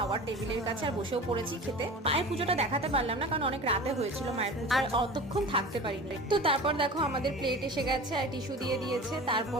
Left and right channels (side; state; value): both; normal; correlation 0.36